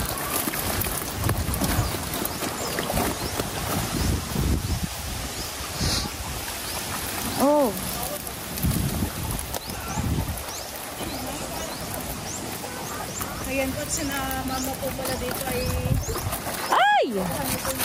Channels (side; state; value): both; identical; correlation 1.00